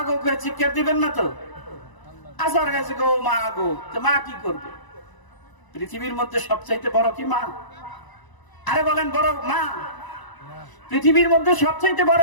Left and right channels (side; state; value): right; late; 1.0 ms